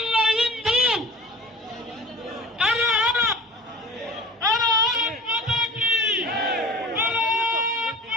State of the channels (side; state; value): both; normal; correlation 0.39